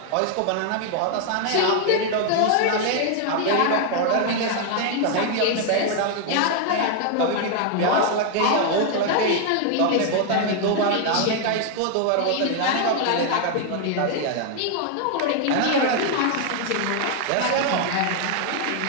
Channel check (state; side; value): different; both; correlation 0.00